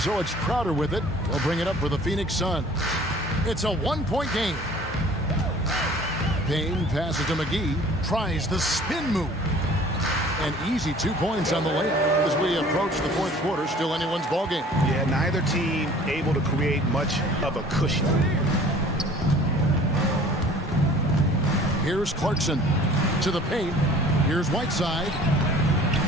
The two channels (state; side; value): normal; both; correlation 0.49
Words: it's Crowder with it. They'll bring it up for the Phoenix Suns. It's a 1-point game. Payne passes to McGee. Tries the spin move. An easy 2 points on the layup as we approach the fourth quarter. Still anyone's ball game. Yeah, neither team able to create much of a cushion. Here's Clarkson to the paint. Here's Whiteside.